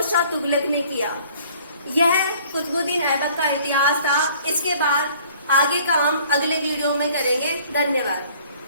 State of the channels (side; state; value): both; inverted; correlation -0.55